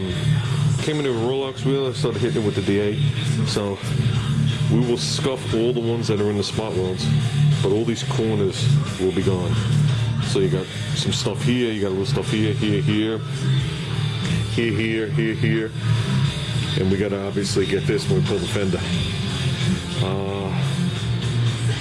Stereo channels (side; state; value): both; identical; correlation 1.00